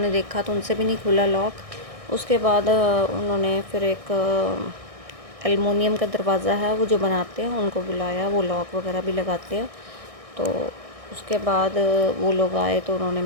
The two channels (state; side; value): late; left; 1.6 ms